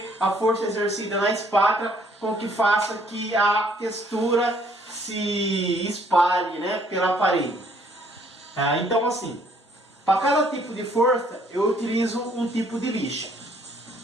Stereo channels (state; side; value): normal; both; correlation 0.63